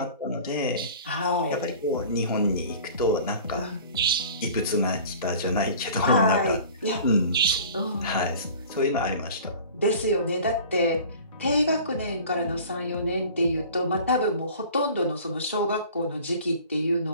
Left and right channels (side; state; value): both; inverted; correlation -0.44